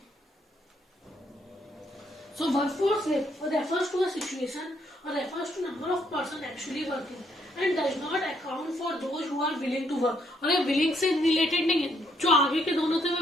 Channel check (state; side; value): normal; both; correlation 0.72